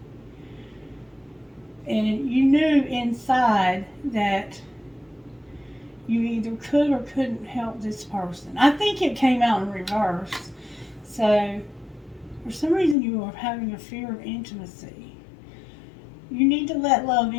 And you knew inside that you either could or couldn't help this person. I think it came out in reverse. So, for some reason you are having a fear of intimacy. You need to let love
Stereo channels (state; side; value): drops out; right; at 13.0 s